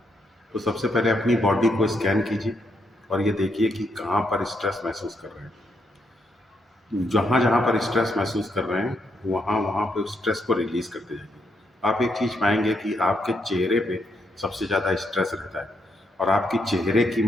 तो सबसे पहले अपनी बॉडी को स्कैन कीजिए और ये देखिए कि कहाँ पर स्ट्रेस महसूस कर रहे हैं। जहाँ जहाँ पर स्ट्रेस महसूस कर रहे हैं, वहाँ वहाँ पे उस स्ट्रेस को रिलीज करते जाइए। आप एक चीज़ पाएंगे कि आपके चेहरे पे सबसे ज़्यादा स्ट्रेस रहता है, और आपकी चेहरे की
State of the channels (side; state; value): both; normal; correlation 0.78